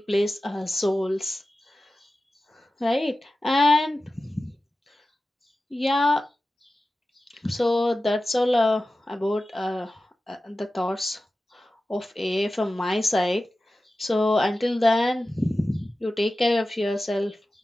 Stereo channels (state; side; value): normal; both; correlation 0.95